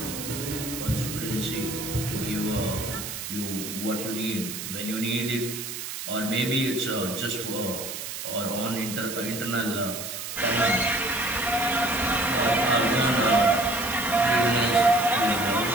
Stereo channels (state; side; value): noise; right; hiss, 7 dB below the sound